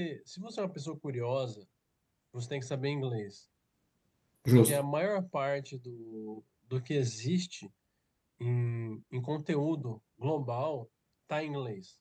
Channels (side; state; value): both; identical; correlation 1.00